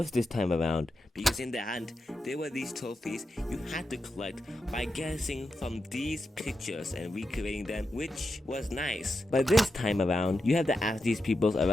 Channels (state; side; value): normal; both; correlation 0.88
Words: this time around because in the hunt there were these trophies you had to collect by guessing from these pictures and recreating them, which was nice. But this time around you have to ask these people